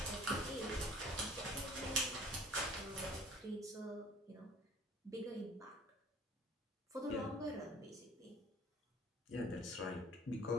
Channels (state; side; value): normal; both; correlation 0.50